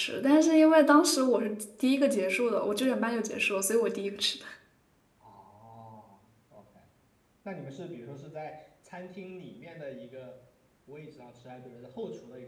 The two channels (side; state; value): both; identical; correlation 1.00